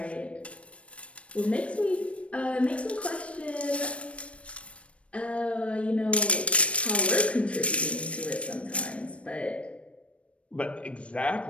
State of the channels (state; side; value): late; right; 0.062 ms